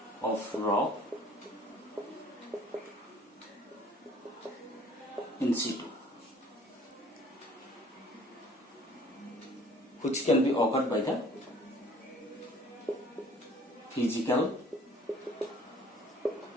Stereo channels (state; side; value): normal; both; correlation 0.54